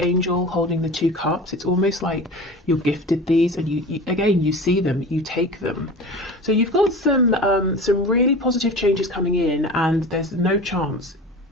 angel holding the two cups. It's almost like you're gifted these, and you again, you see them, you take them. So you've got some really positive changes coming in, and there's no chance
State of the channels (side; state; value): both; normal; correlation 0.35